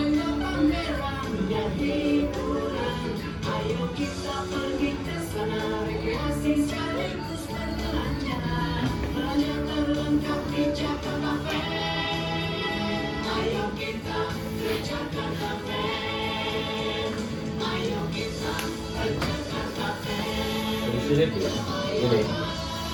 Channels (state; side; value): identical; both; correlation 1.00